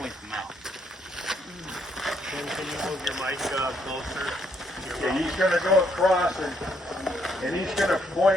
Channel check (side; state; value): both; normal; correlation 0.72